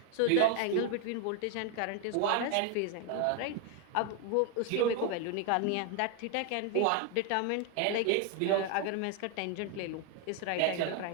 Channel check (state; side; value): different; both; correlation 0.01